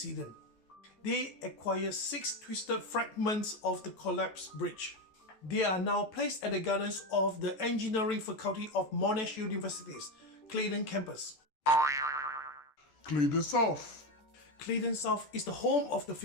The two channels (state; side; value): late; right; 14 ms